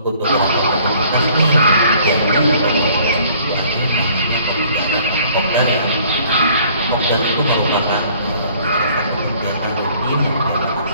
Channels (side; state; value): both; inverted; correlation -0.57